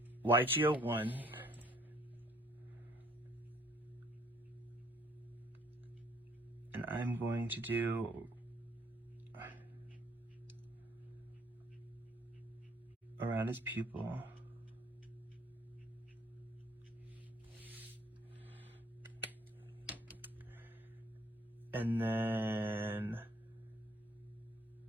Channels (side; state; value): both; normal; correlation 0.62